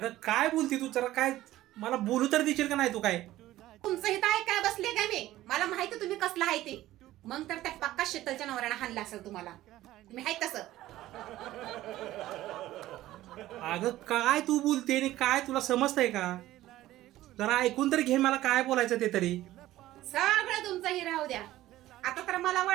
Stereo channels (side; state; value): left; quieter; 15.2 dB